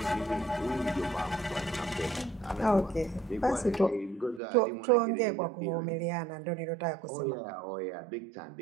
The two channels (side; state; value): left; drops out; at 4.4 s